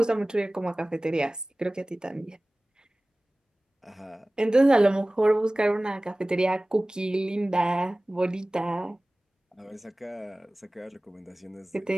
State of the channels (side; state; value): both; normal; correlation 0.98